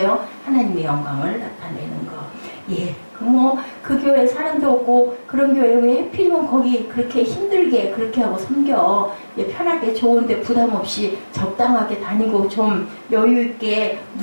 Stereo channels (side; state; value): both; inverted; correlation -1.00